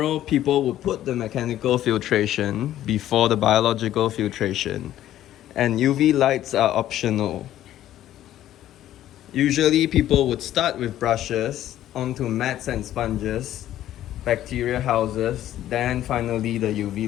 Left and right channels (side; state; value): right; quieter; 12.7 dB